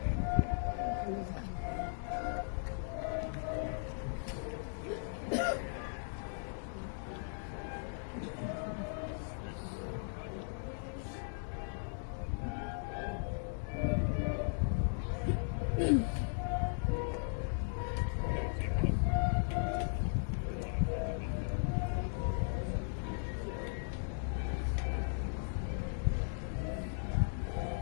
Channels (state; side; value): silent; right; digital silence